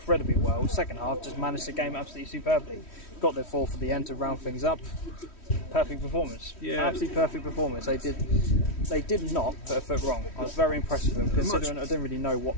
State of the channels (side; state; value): right; late; 3.1 ms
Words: well. Second half, just managed the game absolutely superbly. Got their 4 for the end to round things up. Perfect performance. Yeah. Absolutely perfect performance. They did not put a foot wrong. I was very impressed with them, considering I didn't really know